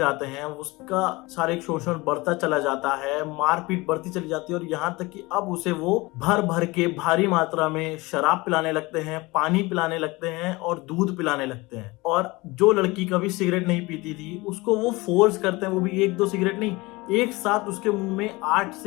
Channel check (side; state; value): right; quieter; 22.8 dB